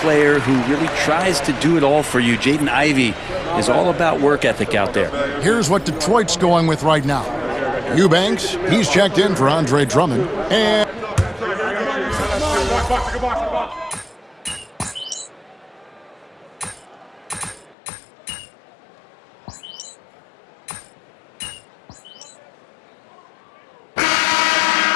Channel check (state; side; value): drops out; right; at 17.8 s